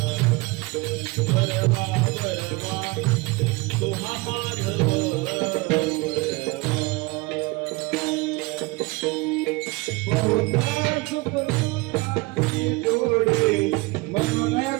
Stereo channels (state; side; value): quieter; left; 24.6 dB